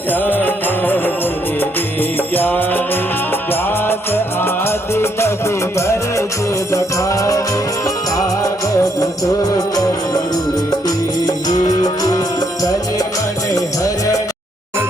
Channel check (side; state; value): both; normal; correlation 0.73